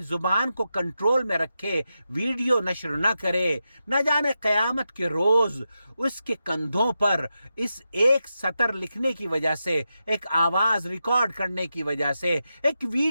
زبان کو کنٹرول میں رکھے، ویڈیو نشر نہ کرے۔ نہ جانے قیامت کے روز اس کے کندھوں پر اس ایک سطر لکھنے کی وجہ سے، ایک آواز ریکارڈ کرنے کی وجہ سے، ایک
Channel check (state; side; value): inverted; both; correlation -0.88